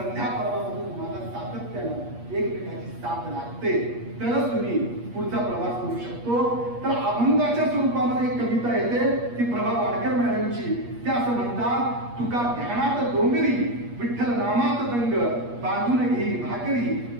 पर्वामधून तुम्हाला सातत्यानं एकमेकाची साथ लागते, तरच तुम्ही पुढचा प्रवास करू शकतो. तर अभंगाच्या स्वरूपामध्ये एक कविता येते, ती प्रभा वाडकर मॅडमची. त्या असं म्हणतात, तुका ध्यानात डोंगरी विठ्ठल नामात दंग बांधून घेई भाकरी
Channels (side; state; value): left; late; 8.4 ms